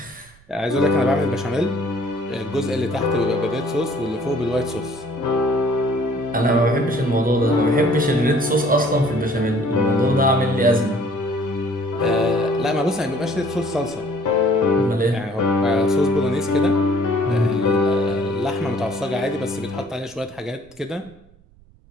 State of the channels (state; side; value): noise; right; rumble, 28 dB below the sound